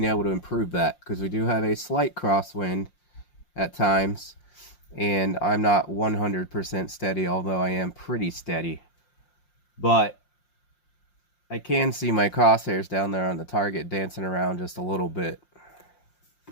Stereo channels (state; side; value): late; right; 5.7 ms